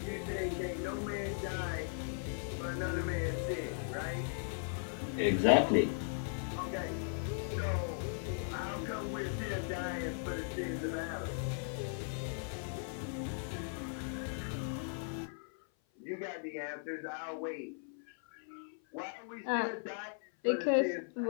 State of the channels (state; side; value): silent; right; 53 dB below the other